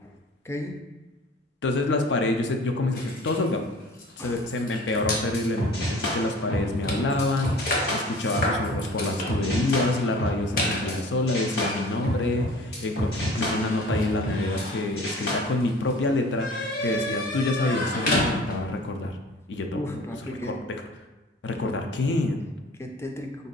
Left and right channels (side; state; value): both; normal; correlation 0.45